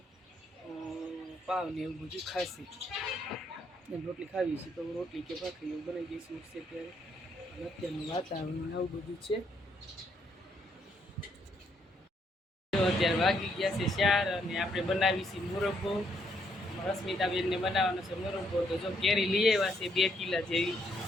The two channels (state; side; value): normal; both; correlation 0.73